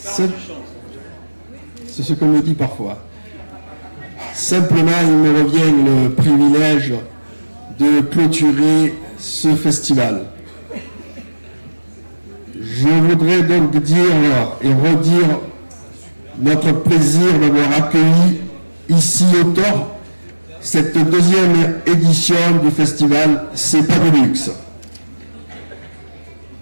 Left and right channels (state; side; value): inverted; both; correlation -1.00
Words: C'est ce qu'on me dit parfois. Simplement, il me revient le privilège de clôturer ce festival. Je voudrais donc dire et redire notre plaisir d'avoir accueilli ici au Thor cette deuxième édition du festival C'est pas de luxe.